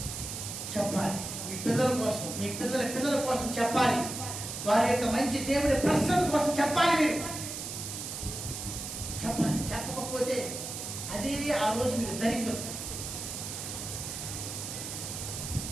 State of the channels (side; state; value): right; noise; hiss, 6 dB below the sound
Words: చెప్పాలి మీ పిల్లల కోసం, మీ పిల్లల కోసం చెప్పాలి. వారి యొక్క మంచి దేవుడి ప్రసన్న కోసం చెప్పాలి. మీరు చెప్పాలి. చెప్పకపోతే అదే ఆ రోజు మీరు దరిద్రం.